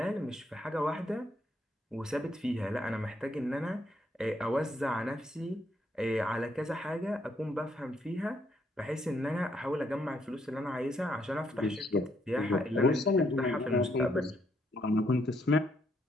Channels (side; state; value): both; normal; correlation 0.73